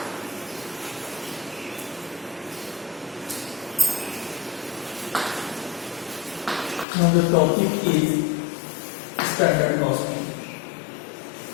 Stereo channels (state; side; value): drops out; right; at 6.9 s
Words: Now the topic is standard costing.